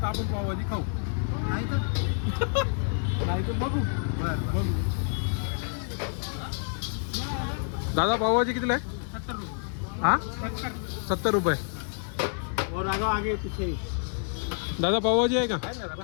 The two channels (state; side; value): silent; right; digital silence